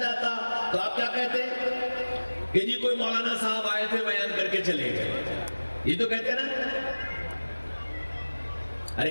تو آپ کیا کہتے کہ جی کوئی مولانا صاحب آئے تھے بیان کر کے چلے گئے؟ یہ تو کہتے نا؟ ارے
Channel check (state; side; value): inverted; both; correlation -1.00